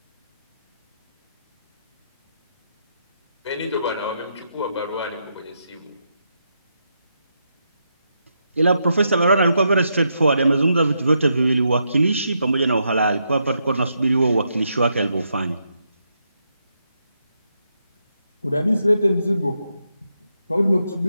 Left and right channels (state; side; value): inverted; both; correlation -0.81